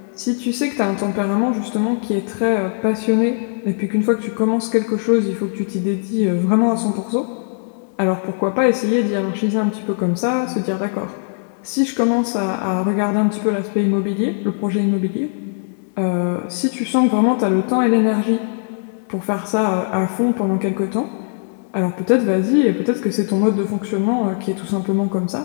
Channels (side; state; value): right; silent; digital silence